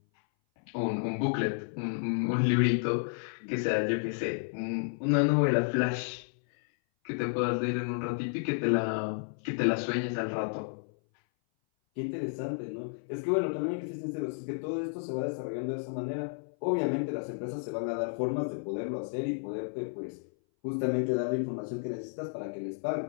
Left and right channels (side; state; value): right; silent; 57 dB below the other